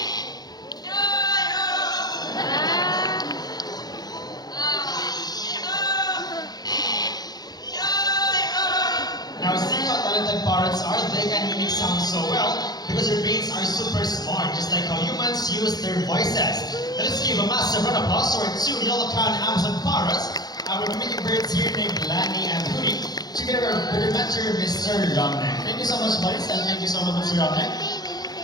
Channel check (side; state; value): right; late; 0.19 ms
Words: Now, see how talented parrots are? They can mimic sound so well because their brains are super smart, just like how humans use their voices. Let us give a massive round of applause to our two yellow-crowned Amazon parrots, our mimicking birds here named Lani and Rudy, together with their mentor, Mr. Romnek. Thank you so much, buddies, and thank you so much, Mr. Romnek.